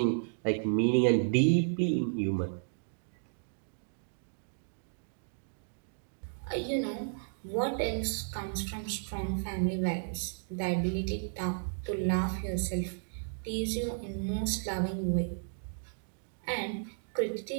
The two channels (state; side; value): silent; left; digital silence